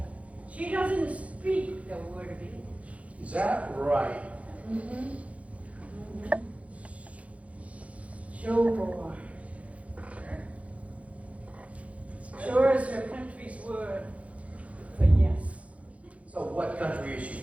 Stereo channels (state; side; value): late; left; 0.065 ms